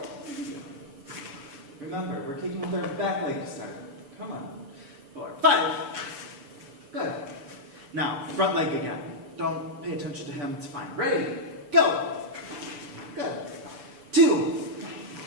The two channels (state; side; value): late; left; 6.9 ms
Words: Remember, we're kicking with our back leg to start. Come on. 4, 5. Good. Now, front leg again. Don't pay attention to him, it's fine. Ready? Go. Good. 2.